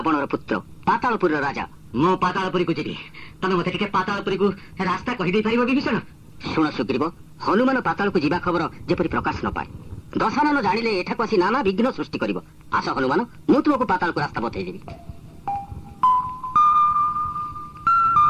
ପୁତ୍ର, ପାତାଳପୁରର ରାଜା। ମୁଁ ପାତାଳପୁରୀକୁ ଯିବି। ତମେ ମତେ ଟିକେ ପାତାଳପୁରୀକୁ ରାସ୍ତା କହିଦେଇ ପାରିବ ବିଭୀଷଣ? ଶୁଣ ସୁଗ୍ରୀବ, ହନୁମାନ ପାତାଳକୁ ଯିବା ଖବର ଯେପରି ପ୍ରକାଶ ନ ପାଏ। ଦଶାନନ ଜାଣିଲେ ଏଠାକୁ ଆସି ନାନା ବିଘ୍ନ ସୃଷ୍ଟି କରିବ। ଆସ ହନୁମାନ, ମୁଁ ତୁମକୁ ପାତାଳକୁ ରାସ୍ତା ବତେଇଦେବି।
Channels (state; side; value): identical; both; correlation 1.00